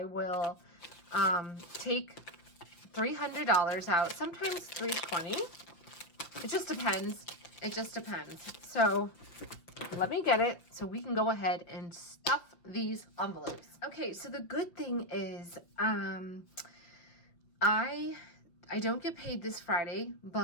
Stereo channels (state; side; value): late; right; 5.8 ms